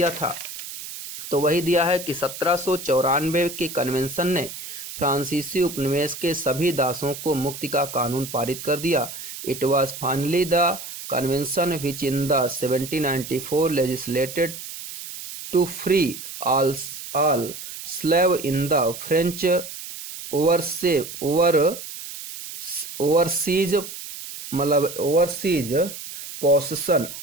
था। तो वही दिया है कि 1794 के कन्वेंशन ने फ्रांसीसी उपनिवेश के सभी दासों को मुक्ति का कानून पारित कर दिया। It was finally the convention which in the 1794 legislated to free all slave in the French overseas मतलब ओवरसीज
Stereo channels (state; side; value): noise; right; hiss, 11 dB below the sound